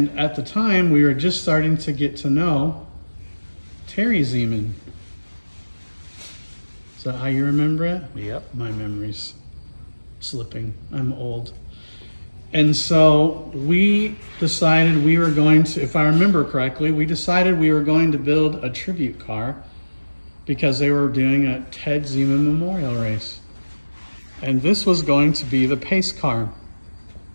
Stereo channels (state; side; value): inverted; both; correlation -1.00